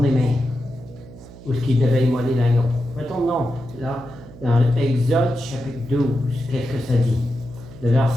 même où il devait immoler l'agneau. Retournons là, dans Exode, chapitre 12. Qu'est-ce que ça dit? Le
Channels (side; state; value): right; noise; hum, 18 dB below the sound